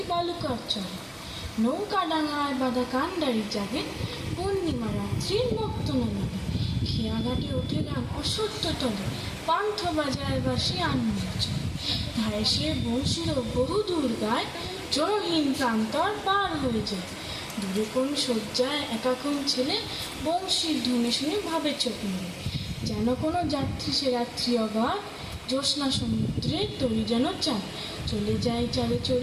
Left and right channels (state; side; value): identical; both; correlation 1.00